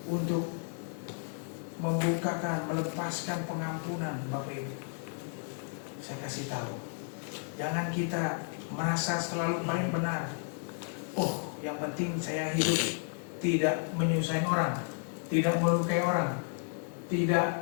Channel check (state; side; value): silent; right; 56 dB below the other